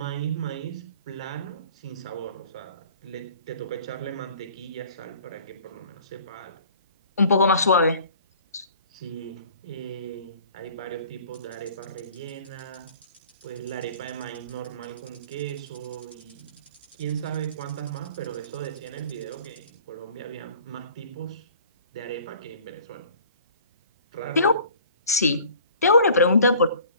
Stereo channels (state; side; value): inverted; both; correlation -0.50